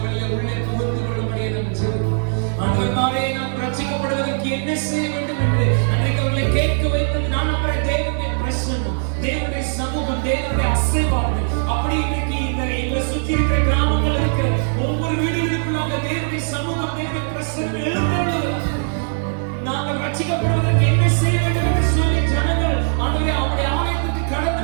உள்ளே புகுந்து கொள்ளும்படியே நாம் ஜெபிக்கிறோம். ஆண்டவரே, நாம் ரட்சிக்கப்படுவதற்கு என்ன செய்ய வேண்டும் என்று அன்றைக்கு அவர்களை கேட்க வைத்தது நான் நம்புற தேவனுடைய பிரசன்னம், தேவனுடைய சமூகம், தேவனுடைய அசைவாடு. அப்படி இன்னைக்கு இந்த எங்களை சுற்றி இருக்கிற கிராமங்கள் இருக்கிற ஒவ்வொரு வீடுகளுக்குள்ளாக தேவனுடைய சமூகம், தேவனுடைய பிரசன்னம் எழுந்தருளுகிறது. நாங்கள் ரட்சிக்கப்படுவதற்கு என்ன செய்ய வேண்டும் என்று சொல்லி ஜனங்கள் ஆண்டவரே அவருடைய ஆலயத்துக்கு கடந்து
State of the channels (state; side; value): silent; left; digital silence